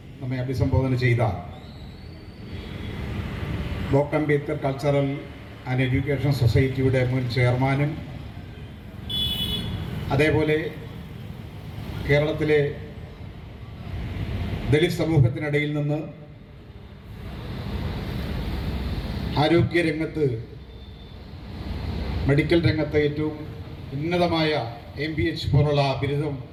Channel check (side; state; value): both; identical; correlation 1.00